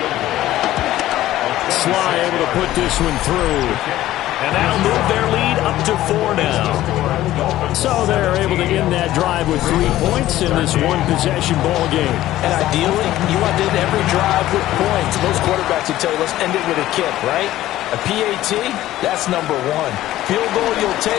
Sly able to put this one through. And that'll move their lead up to 4 now. So they're able to end that drive with 3 points in this one-possession ball game. And ideally, you want to end every drive with points. Most quarterbacks would tell you, let's end it with a kick, right? A PAT, that's number 1. Field goal you'll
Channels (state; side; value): quieter; right; 14.6 dB